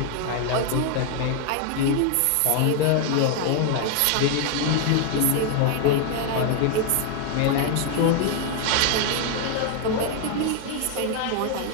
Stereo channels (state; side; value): different; both; correlation 0.00